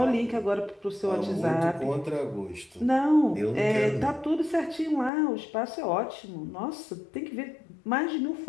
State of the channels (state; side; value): drops out; right; at 5.1 s